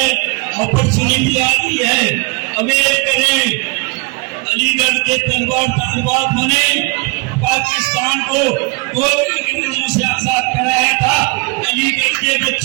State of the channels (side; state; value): left; quieter; 28.7 dB